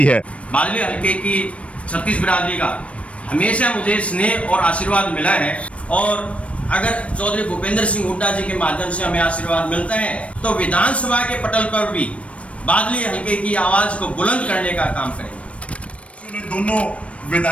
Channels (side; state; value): right; late; 0.063 ms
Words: है। बादली हल्के की छत्तीस बिरादरी का हमेशा मुझे स्नेह और आशीर्वाद मिला है, और अगर चौधरी भूपेंद्र सिंह हुड्डा जी के माध्यम से हमें आशीर्वाद मिलता है तो विधानसभा के पटल पर भी बादली हल्के की आवाज को बुलंद करने का काम करेंगे। दोनों